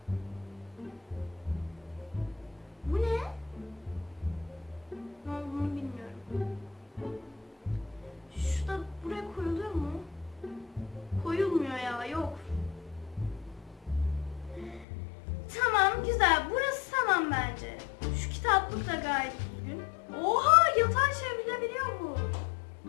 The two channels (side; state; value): right; drops out; at 14.9 s